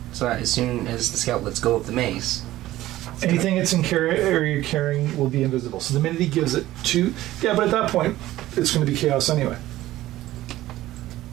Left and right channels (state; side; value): quieter; left; 15.5 dB